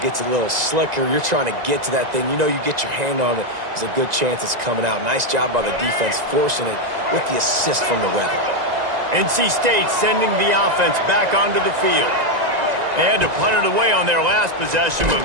gets a little slicker. You're trying to get to that thing. You know you get your hand on it. There's a good chance it's coming out. Nice job by the defense forcing it with the assist from the weather. NC State sending the offense back onto the field. They had to punt it away on their last possession, but,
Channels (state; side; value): late; left; 1.9 ms